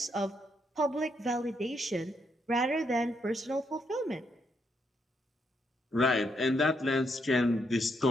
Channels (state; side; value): normal; both; correlation 0.77